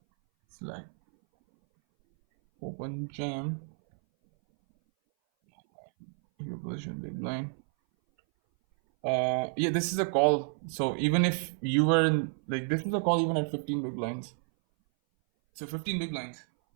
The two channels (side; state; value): left; silent; 58 dB below the other